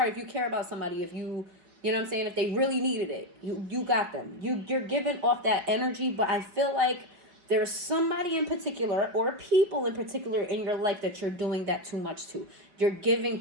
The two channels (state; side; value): late; left; 5.2 ms